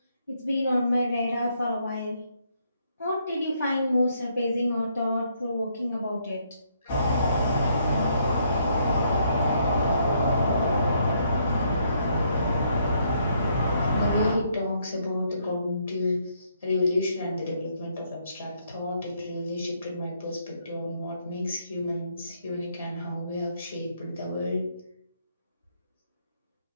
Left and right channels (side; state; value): both; inverted; correlation -0.71